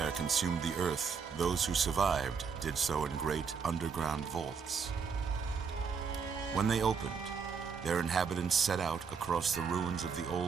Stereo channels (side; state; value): left; quieter; 5.9 dB